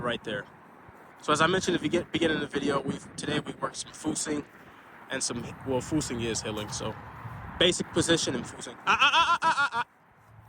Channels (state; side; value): identical; both; correlation 1.00